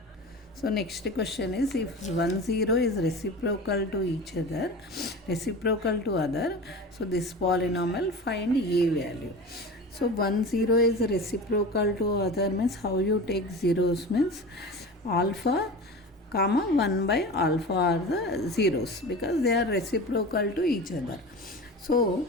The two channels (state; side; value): normal; both; correlation 0.33